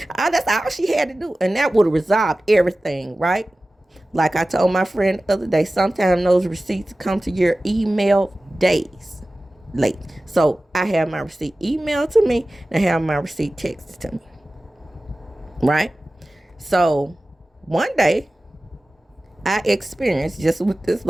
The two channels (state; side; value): normal; both; correlation 0.96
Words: That's all she had to do. And that would have resolved everything, right? Like I told my friend the other day, sometimes those receipts come to your email days late. So I have my receipt emailed to me and I have my receipt texted to me. Right? So one day I experienced just what this